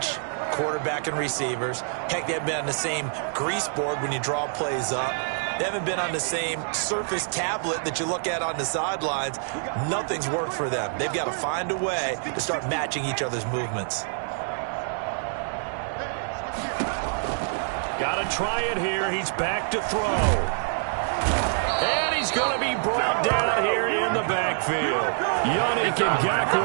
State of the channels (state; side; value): silent; left; digital silence